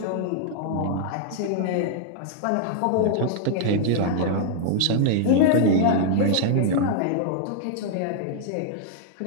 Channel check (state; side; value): different; both; correlation -0.01